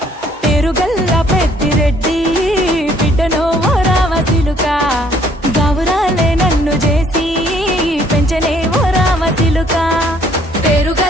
పేరుగల్ల పెద్దిరెడ్డి బిడ్డనో ఓ రామసిలుక గౌరాలే నన్ను చేసి పెంచనే ఓ రామసిలుక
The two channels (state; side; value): normal; both; correlation 0.62